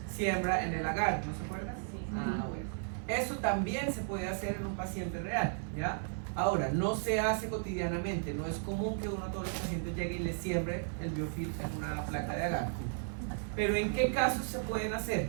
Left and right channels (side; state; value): left; silent; 55 dB below the other